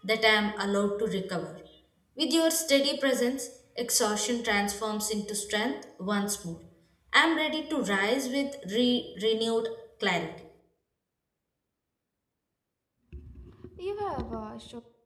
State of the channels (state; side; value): identical; both; correlation 1.00